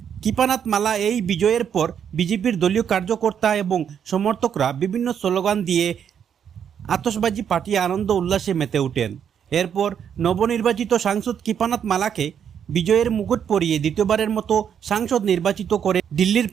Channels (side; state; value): left; quieter; 8.3 dB